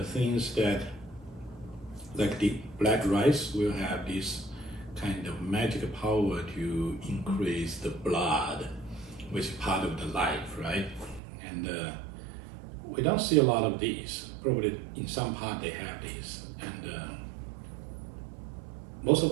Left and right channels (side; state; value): left; drops out; at 11.2 s